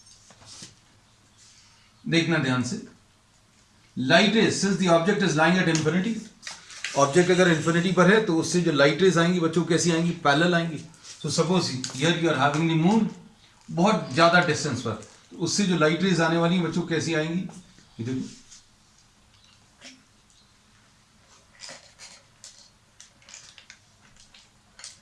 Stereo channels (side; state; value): both; identical; correlation 1.00